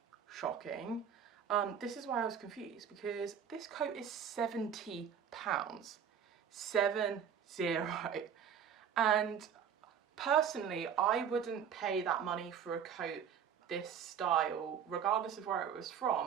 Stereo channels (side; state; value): left; quieter; 7.9 dB